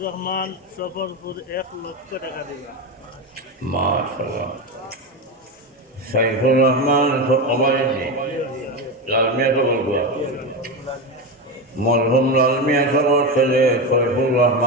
রহমান সফরপুর 1 লক্ষ টাকা দিবা মাশাআল্লাহ সাইফুর রহমান সবাইজি লালমিয়া তো বলবো মরহুম লালমিয়া সবার ছেলে সাইফুর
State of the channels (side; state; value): both; normal; correlation 0.16